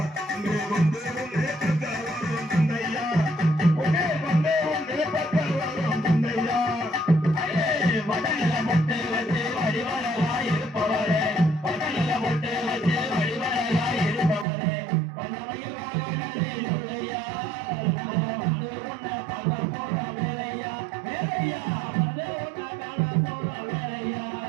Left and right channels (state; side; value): drops out; left; at 14.5 s